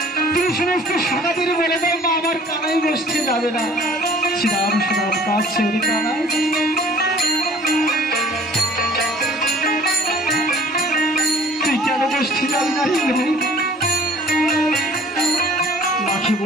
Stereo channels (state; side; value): normal; both; correlation 0.52